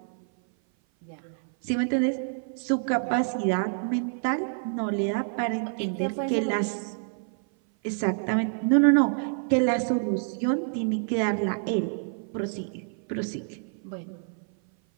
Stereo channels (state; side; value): silent; left; 56 dB below the other